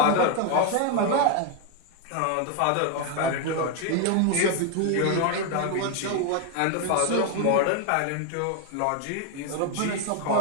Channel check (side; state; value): both; different; correlation 0.01